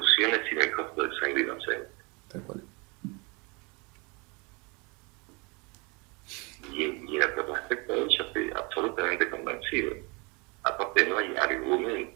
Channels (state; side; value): quieter; left; 29.4 dB